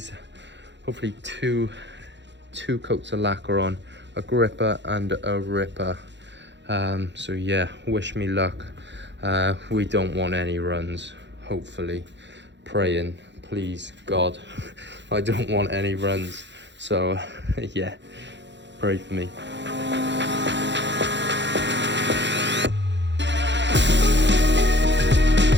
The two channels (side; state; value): left; late; 0.52 ms